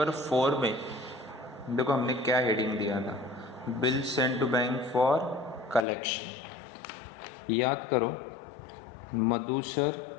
4 में देखो हमने क्या हेडिंग दिया था, bill send to bank for collection. याद करो, मधु सर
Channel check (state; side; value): drops out; right; at 5.9 s